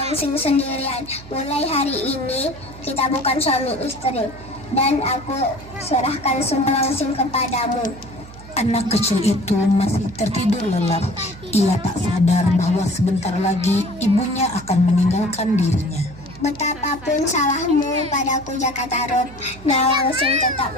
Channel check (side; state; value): right; noise; hum, 18 dB below the sound